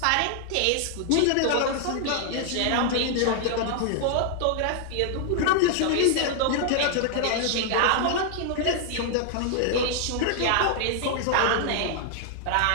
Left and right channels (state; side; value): different; both; correlation 0.00